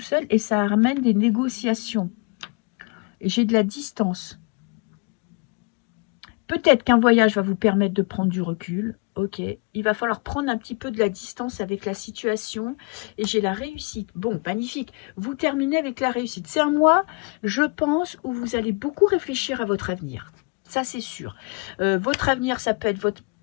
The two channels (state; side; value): quieter; right; 32.3 dB